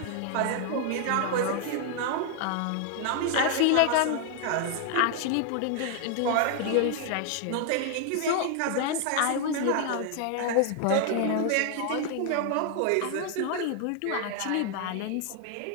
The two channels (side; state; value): both; different; correlation 0.00